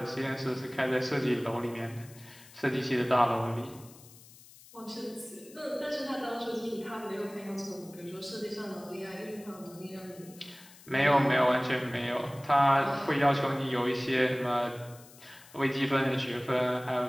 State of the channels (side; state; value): left; noise; hiss, 22 dB below the sound